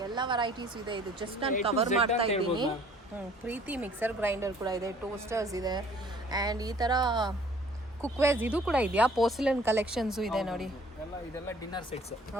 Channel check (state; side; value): normal; both; correlation 0.55